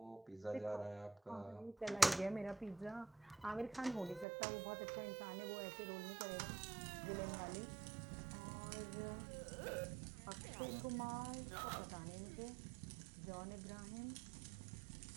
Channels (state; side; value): drops out; left; at 4.2 s